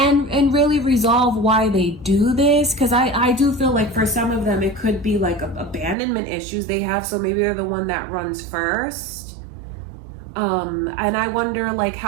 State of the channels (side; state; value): left; drops out; at 6.0 s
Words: really resolve why they do this. Because I do feel like for some of them, it could be like abandonment issues they have. So maybe they're the one that runs first. And I wonder like